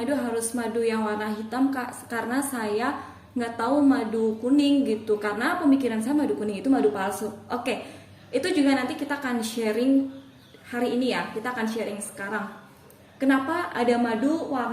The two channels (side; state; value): both; identical; correlation 1.00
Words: harus madu yang warna hitam, Kak, karena saya nggak tahu madu kuning gitu, karena pemikiran saya madu kuning itu madu palsu." Oke, itu juga nanti kita akan sharing hari ini ya, kita akan sharing sekarang. Kenapa ada madu